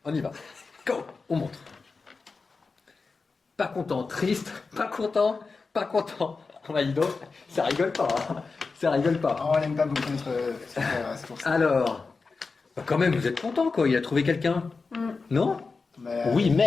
On y va. Go, on montre. Pas content, triste, pas content, pas content. Oh bah dis donc, ça rigole pas. Hein. Ça rigole pas. Oh, on n'aime pas beaucoup notre frère, c'est pour ça. Alors, bah quand même, vous êtes content quoi. Il a trouvé quelqu'un. Non? Mais, Oui,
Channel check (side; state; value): right; quieter; 4.3 dB